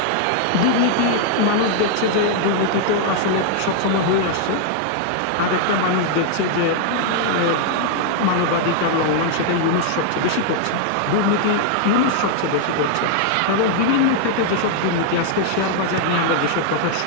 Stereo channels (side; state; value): both; different; correlation -0.01